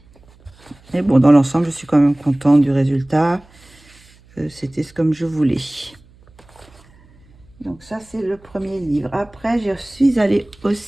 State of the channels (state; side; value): noise; right; hum, 28 dB below the sound